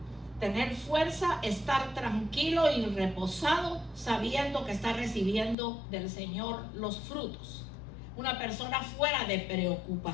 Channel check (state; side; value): drops out; right; at 5.6 s